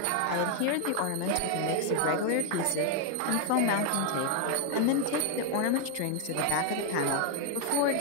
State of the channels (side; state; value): both; different; correlation 0.01